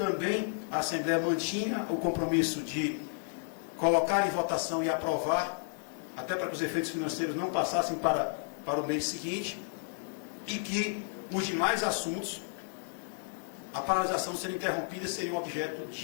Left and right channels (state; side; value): silent; right; digital silence